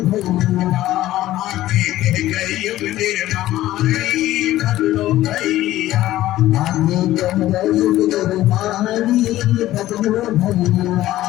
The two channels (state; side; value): quieter; right; 14.9 dB